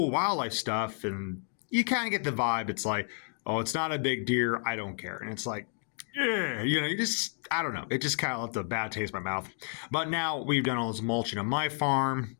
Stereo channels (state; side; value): silent; right; 55 dB below the other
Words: wildlife stuff, and you kind of get the vibe. It's like, oh, it's not a big deer. I don't care. And it's like, yeah, I don't know. It just kind of left a bad taste in my mouth. But now we've done all this mulching on my farm.